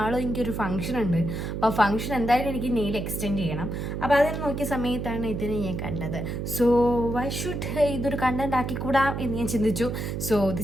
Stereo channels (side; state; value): right; noise; hum, 4 dB below the sound